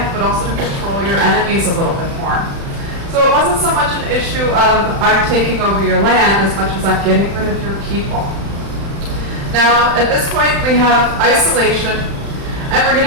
but also to control your enemies a little bit more. So it wasn't so much an issue of I'm taking over your land as much as I'm getting rid of your people. Now, at this point, we have isolation, and we're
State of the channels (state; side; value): late; left; 35 ms